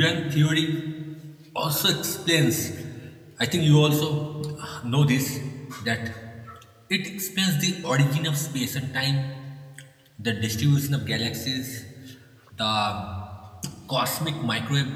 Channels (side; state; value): both; identical; correlation 1.00